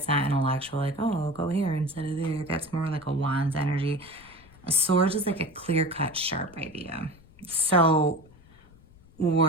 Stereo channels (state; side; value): noise; left; rumble, 25 dB below the sound